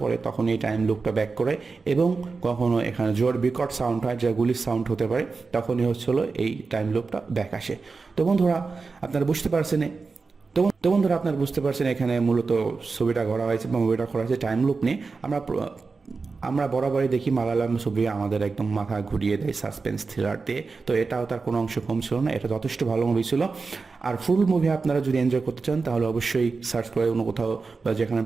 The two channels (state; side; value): quieter; left; 4.4 dB